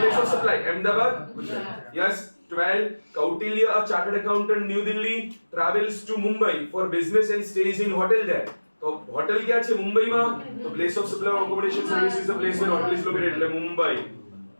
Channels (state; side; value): inverted; both; correlation -1.00